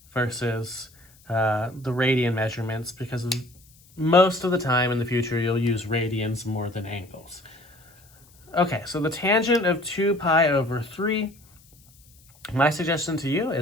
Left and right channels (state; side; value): noise; left; hiss, 28 dB below the sound